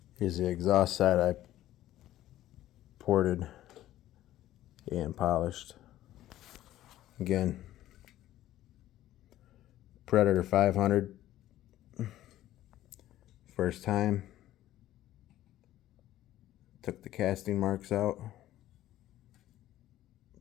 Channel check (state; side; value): quieter; right; 13.9 dB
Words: Here's the exhaust side I ported and polished. Again, Predator 500. First time. Took the casting marks out.